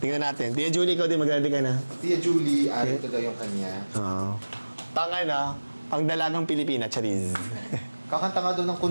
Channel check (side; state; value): both; inverted; correlation -1.00